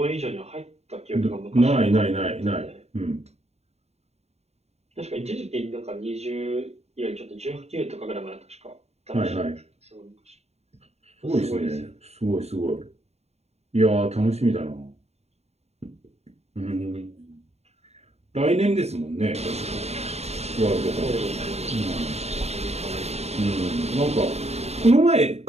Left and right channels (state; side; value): late; left; 0.31 ms